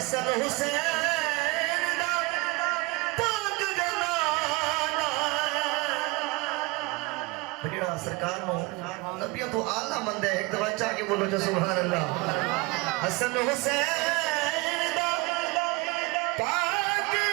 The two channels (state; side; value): quieter; left; 24.5 dB